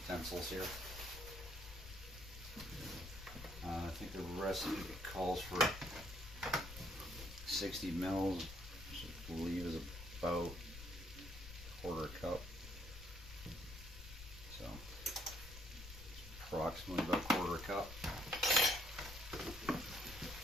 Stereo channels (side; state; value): left; noise; rumble, 13 dB below the sound